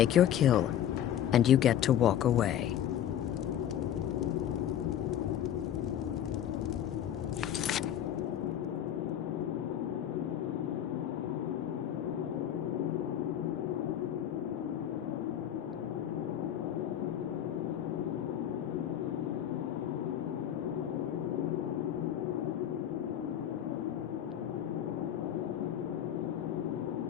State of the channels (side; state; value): right; quieter; 10.5 dB